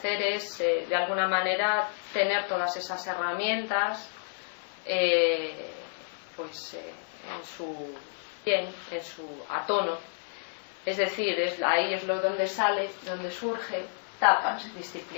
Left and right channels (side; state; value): right; silent; 58 dB below the other